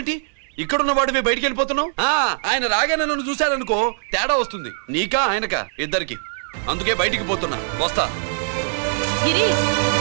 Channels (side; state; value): left; silent; digital silence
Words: ఇక్కడున్న వాడివి బయటికి వెళ్ళిపోతున్నావు? ఆయన రాగానే నన్ను చూశారనుకో తేడా వస్తుంది, నీకా ఆయనకా ఇద్దరికి. అందుకే బయటికి పోతున్నా, వస్తా. గిరి,